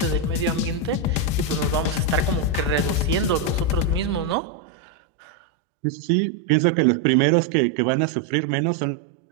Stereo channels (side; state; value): left; drops out; at 4.4 s